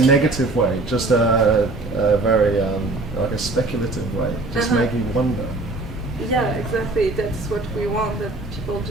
way, just a very like a speculative way, just make you wonder. Yeah, exactly. That's what we want, that people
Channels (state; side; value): quieter; left; 3.1 dB